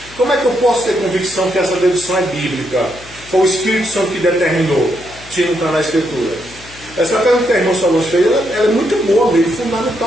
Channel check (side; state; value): left; noise; hum, 21 dB below the sound